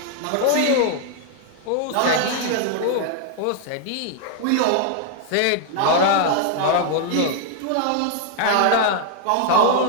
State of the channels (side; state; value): both; different; correlation 0.00